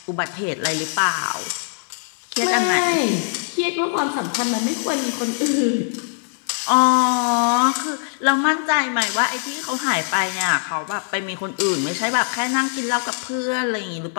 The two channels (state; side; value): silent; right; 62 dB below the other